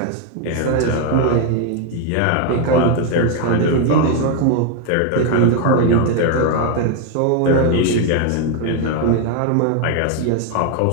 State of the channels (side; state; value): both; different; correlation 0.01